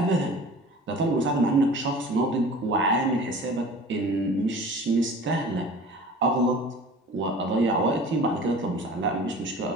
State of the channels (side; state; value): both; normal; correlation 0.42